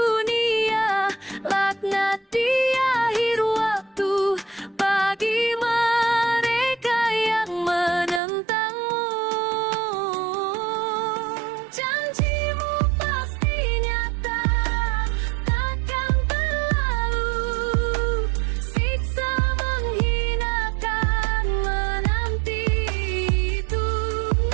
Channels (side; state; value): left; drops out; at 8.2 s